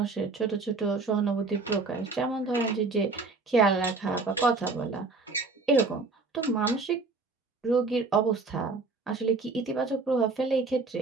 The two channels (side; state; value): left; quieter; 3.9 dB